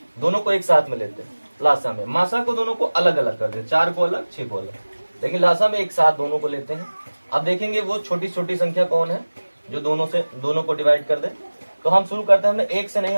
दोनों को एक साथ में लेते हैं लासा में। मासा को दोनों को अलग अलग कर देते, 4 को अलग, 6 को अलग, लेकिन लासा में एक साथ दोनों को लेते हैं। अब देखेंगे वो छोटी छोटी संख्या कौन है जो दोनों को डिवाइड कर दे। तो हम शुरू करते हैं, हमने 1 से नहीं,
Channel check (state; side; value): inverted; both; correlation -1.00